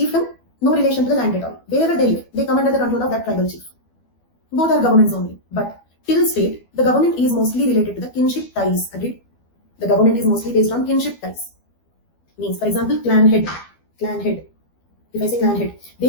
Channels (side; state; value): right; late; 12 ms